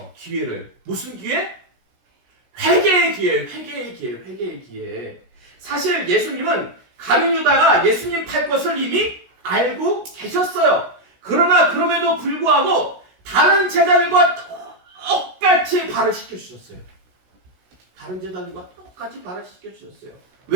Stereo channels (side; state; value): left; late; 16 ms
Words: 기회를. 무슨 기회? 회개의 기회, 회개의 기회, 회개의 기회. 사실 예수님은 가룟 유다가 예수님 팔 것을 이미 알고 계셨어요. 그러나 그럼에도 불구하고 다른 제자들과 똑같이 발을 시켜주셨어요. 다른 제자들과 똑같이 발을 시켜주셨어요.